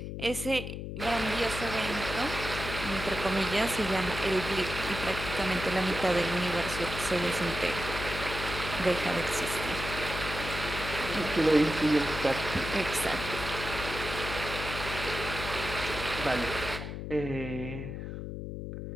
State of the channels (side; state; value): left; noise; hum, 6 dB below the sound